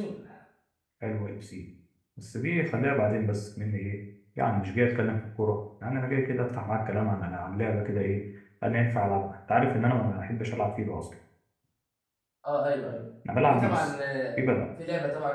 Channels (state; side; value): identical; both; correlation 1.00